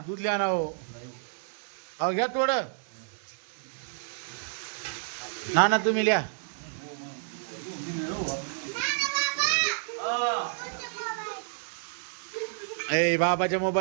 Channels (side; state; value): left; silent; 58 dB below the other